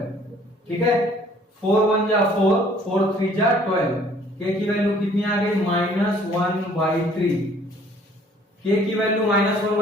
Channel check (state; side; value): normal; both; correlation 0.57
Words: ठीक है, 4 1 जा 4, 4 3 जा 12, k की वैल्यू कितनी आ गई -1/3। k की वैल्यू